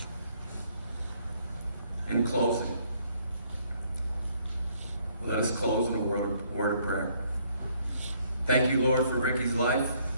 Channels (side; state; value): both; inverted; correlation -0.66